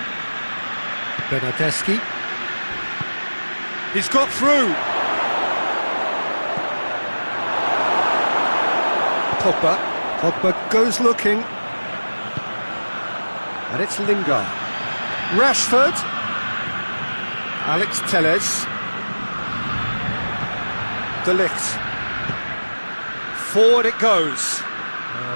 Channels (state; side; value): inverted; both; correlation -1.00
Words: Bernardeschi. He's got through. Pogba. Pogba goes looking. And it's Lingard. Rashford. Alex Telles. De Ligt. Forward it goes.